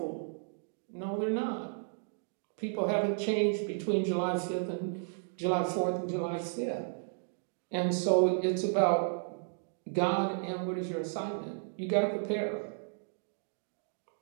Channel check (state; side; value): silent; left; digital silence